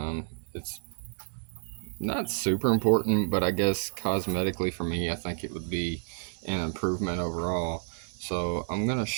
It's not super important, but I guess cosmetically for me, I think it would be an improvement overall. So I'm going to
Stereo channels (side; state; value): left; silent; digital silence